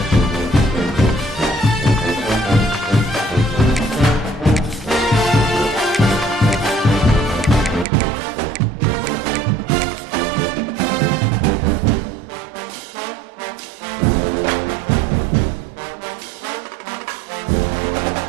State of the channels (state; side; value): drops out; left; at 7.9 s